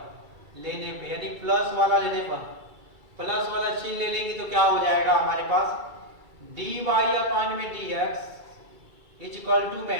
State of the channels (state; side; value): late; left; 2.3 ms